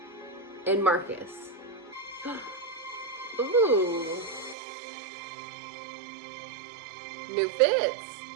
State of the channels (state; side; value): drops out; left; at 4.5 s